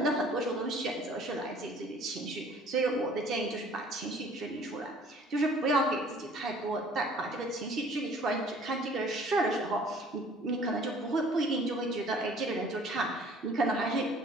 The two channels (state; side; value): normal; both; correlation 0.53